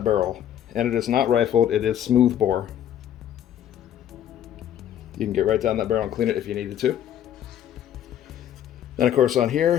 barrel. And it is not rifled, it is smooth bore. You can get right down that barrel and clean it if you needed to. Then of course on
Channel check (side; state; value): right; quieter; 10.6 dB